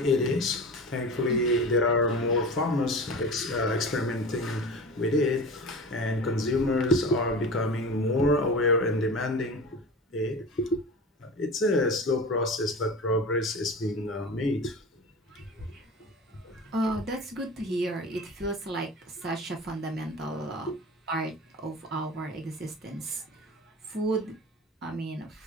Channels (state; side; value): normal; both; correlation 0.32